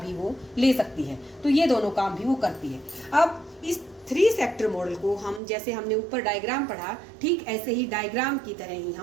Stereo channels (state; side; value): drops out; left; at 5.4 s